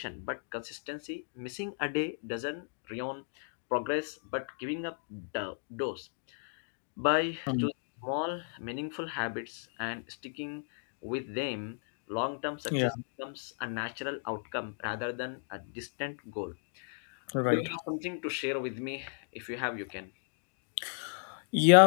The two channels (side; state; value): right; silent; digital silence